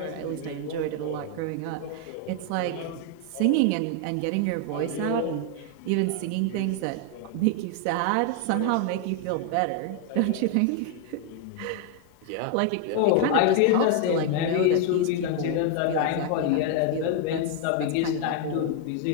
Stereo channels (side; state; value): both; different; correlation 0.00